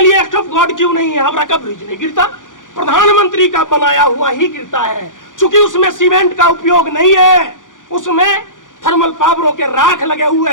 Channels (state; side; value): late; right; 0.88 ms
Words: एक्ट ऑफ गॉड क्यों नहीं है? हावड़ा का ब्रिज नहीं गिरता, प्रधानमंत्री का बनाया हुआ ही गिरता है। चूंकि उसमें सीमेंट का उपयोग नहीं है, उसमें थर्मल पावरों के राख लगे हुए